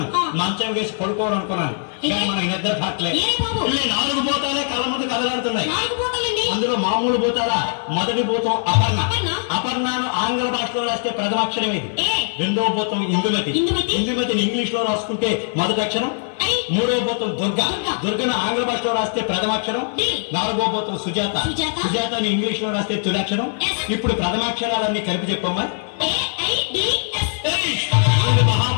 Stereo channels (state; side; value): silent; right; 65 dB below the other